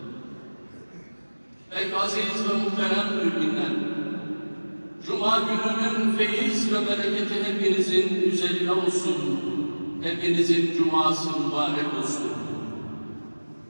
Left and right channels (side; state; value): both; inverted; correlation -1.00